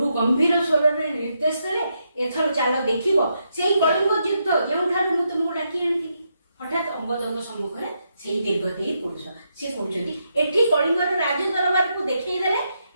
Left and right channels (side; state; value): both; inverted; correlation -0.81